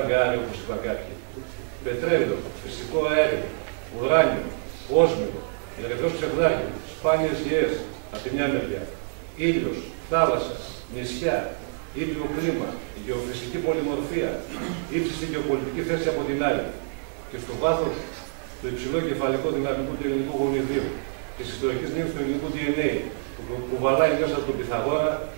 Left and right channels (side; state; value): left; silent; digital silence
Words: όπως είπα κάποιοι. Πετρέλαιο, φυσικό αέριο, ουράνιο, όσμιο, ερυθρός ψευδάκι, σπάνιες γεές από τη μια μεριά, ήλιος, θάλασσα, νησιά, ήπιο κλίμα, γεωφυσική πολυμορφία, ύψιστη γεωπολιτική θέση από την άλλη. Και στο βάθος το υψηλό κεφαλικό δυναμικό του ελληνικού γονιδίου, της ιστορικής μνήμης του ελληνικού DNA, που βαλάει μέσα από τον Πυθαγόρα,